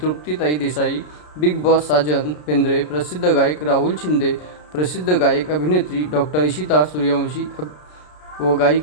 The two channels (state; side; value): late; right; 33 ms